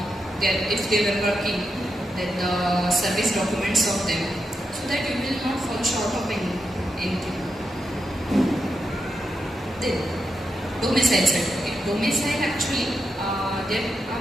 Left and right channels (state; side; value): normal; both; correlation 0.85